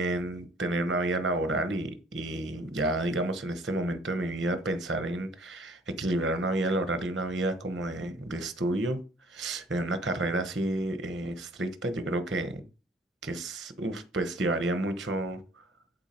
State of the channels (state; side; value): normal; both; correlation 0.56